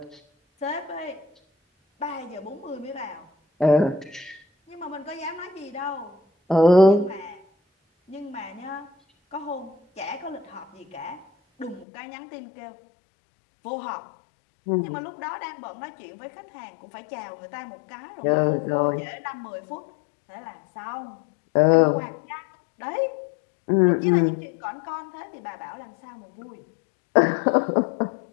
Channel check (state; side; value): drops out; right; at 11.9 s